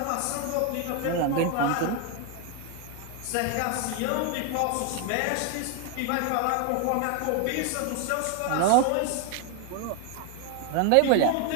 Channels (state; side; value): different; both; correlation 0.01